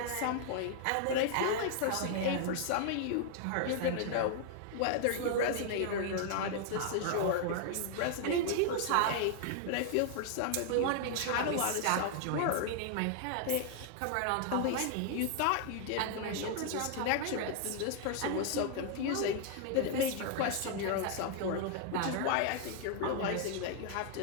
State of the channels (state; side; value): different; both; correlation 0.00